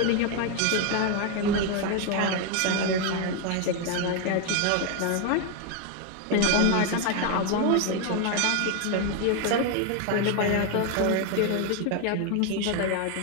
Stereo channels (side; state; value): both; different; correlation 0.01